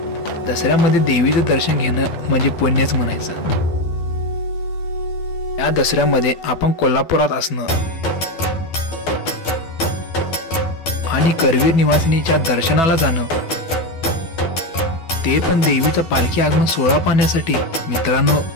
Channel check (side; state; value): right; late; 12 ms